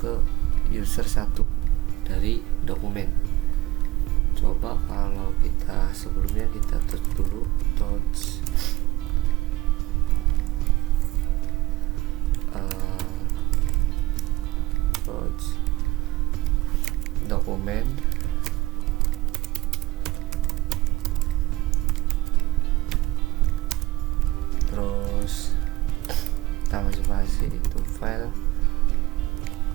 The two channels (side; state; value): left; quieter; 18.3 dB